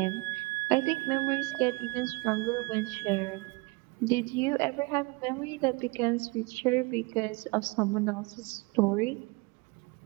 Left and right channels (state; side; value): quieter; left; 26.4 dB